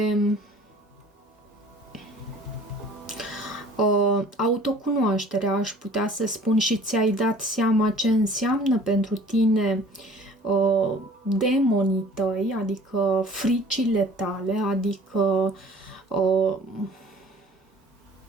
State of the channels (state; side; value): normal; both; correlation 0.49